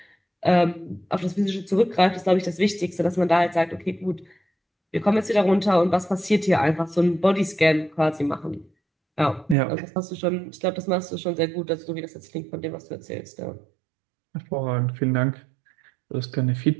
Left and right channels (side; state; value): left; drops out; at 9.6 s